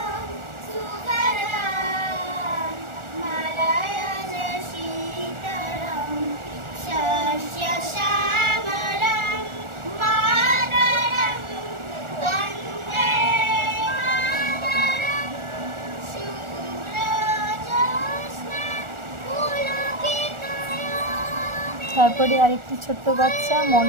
তারপরে আরেকটি ছোট্ট বাচ্চা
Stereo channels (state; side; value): late; left; 1.4 ms